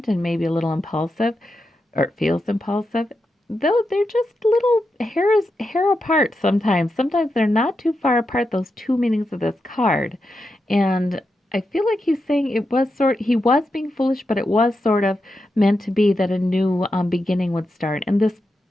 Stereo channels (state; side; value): normal; both; correlation 0.87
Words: and maybe a little impulsive, or it feels impulsive, though they're just little hair apart sometimes. Sometimes they're not too far apart, those two meanings of this card. And I feel like he's saying he was being foolish, but it was sort of meant to be that a new beginning would start. And this